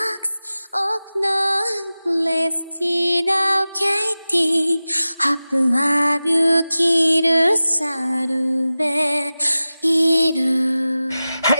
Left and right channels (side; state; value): both; inverted; correlation -0.96